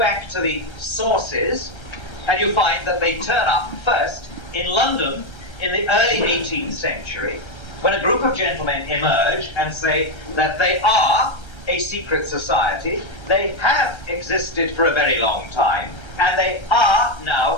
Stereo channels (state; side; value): late; right; 1.3 ms